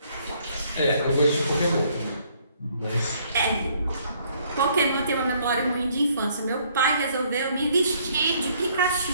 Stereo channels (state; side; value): inverted; both; correlation -0.65